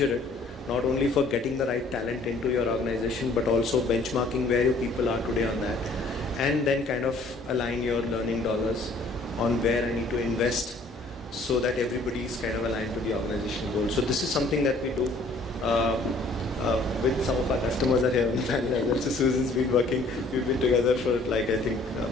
it, not only for getting the right talent into your organization, but also benchmarking where your people are today on that, and then kind of align your learning dollars on where I need to invest so that everybody is kind of aligned to the organizational goal. So this is something that we do with some of our customers are here on the panel. So Susan's been working, we've been together for like I think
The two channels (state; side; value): quieter; right; 3.0 dB